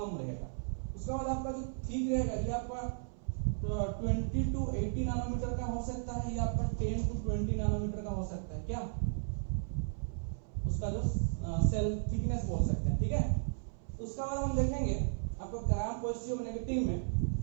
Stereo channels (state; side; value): silent; left; 54 dB below the other